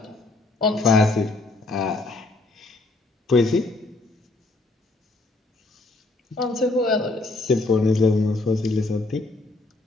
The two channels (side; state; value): right; quieter; 3.1 dB